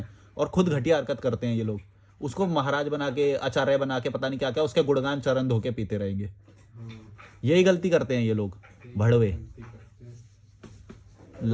और खुद घटिया हरकत करते हैं ये लोग। उसको महाराज बना के, आचार्य बना के, पता नहीं क्या क्या, उसके गुणगान चरण धो के पीते रहेंगे। यही गलती करते हैं ये लोग, भड़वे,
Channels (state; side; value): identical; both; correlation 1.00